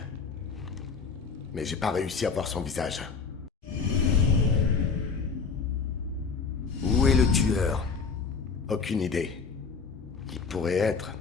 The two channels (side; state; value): right; quieter; 5.2 dB